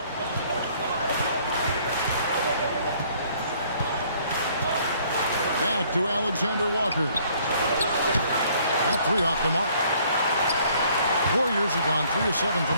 Back to Alexander Walker. That three off the mark. Warriors have gone 3 of 7 from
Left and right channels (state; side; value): inverted; both; correlation -0.61